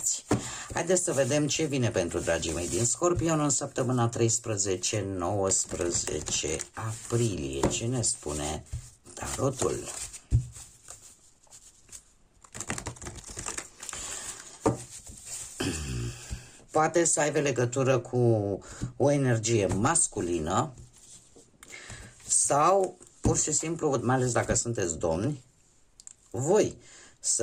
Haideți să vedem ce vine pentru dragii mei din Scorpion în săptămâna 13-19 aprilie. Ce ne spune tarotul? Poate să aibă legătură cu o energie masculină sau pur și simplu, mai ales dacă sunteți domni, voi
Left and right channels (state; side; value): identical; both; correlation 1.00